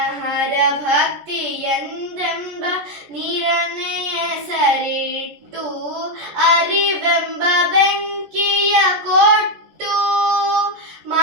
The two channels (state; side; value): late; left; 14 ms